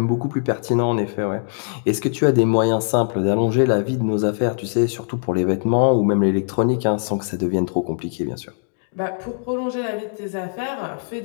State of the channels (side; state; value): right; silent; 65 dB below the other